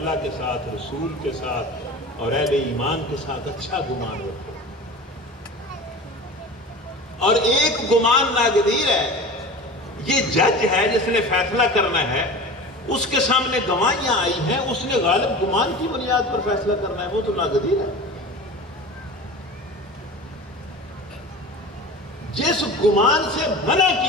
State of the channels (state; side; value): normal; both; correlation 0.34